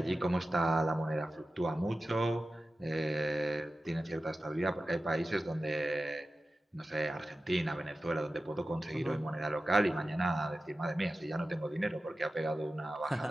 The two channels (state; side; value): normal; both; correlation 0.94